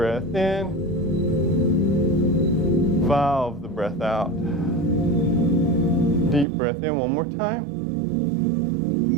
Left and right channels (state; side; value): drops out; left; at 6.5 s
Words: in. Valve the breath out. Deep breath in one more time.